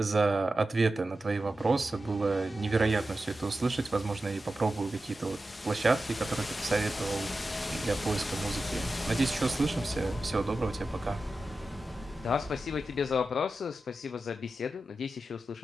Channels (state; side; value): normal; both; correlation 0.92